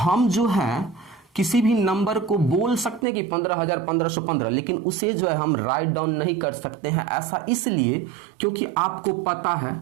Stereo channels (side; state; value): left; drops out; at 3.1 s